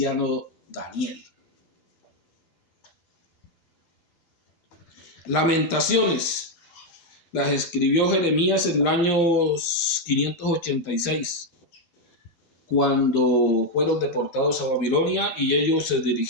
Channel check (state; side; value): late; right; 12 ms